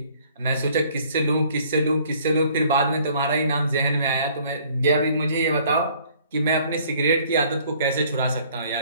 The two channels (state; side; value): inverted; both; correlation -0.58